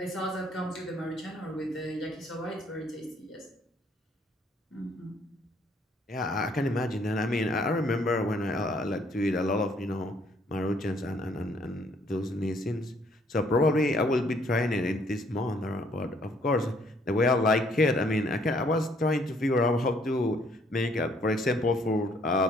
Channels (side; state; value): both; normal; correlation 0.65